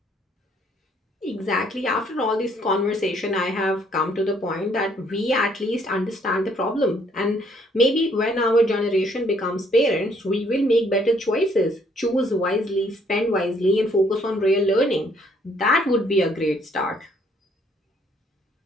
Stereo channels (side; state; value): both; normal; correlation 0.65